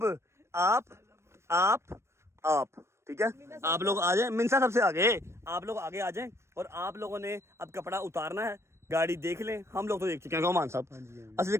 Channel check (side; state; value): left; late; 0.13 ms